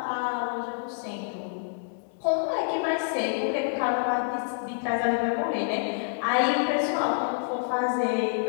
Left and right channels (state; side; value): silent; right; digital silence